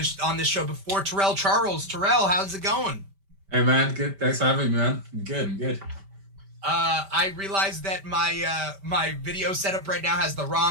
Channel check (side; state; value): left; late; 5.1 ms